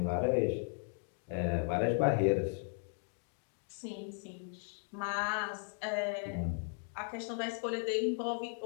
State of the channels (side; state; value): right; silent; 53 dB below the other